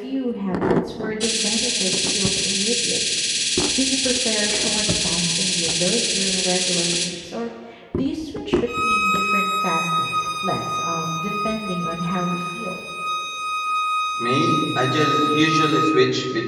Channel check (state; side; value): identical; both; correlation 1.00